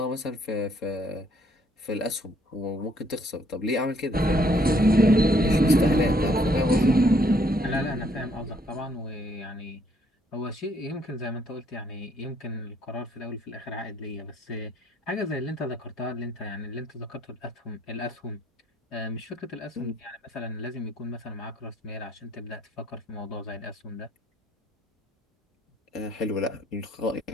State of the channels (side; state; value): both; normal; correlation 0.67